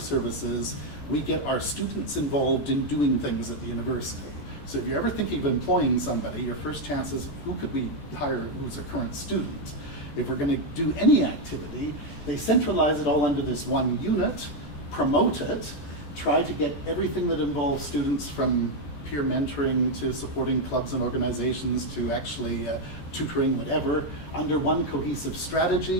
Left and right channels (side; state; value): right; late; 14 ms